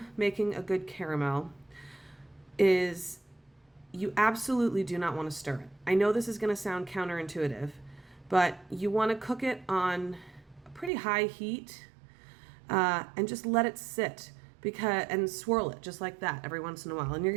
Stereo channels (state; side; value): drops out; left; at 10.9 s